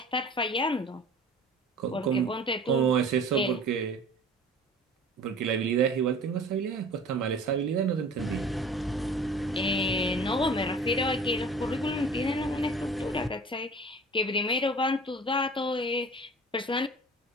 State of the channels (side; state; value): both; normal; correlation 0.44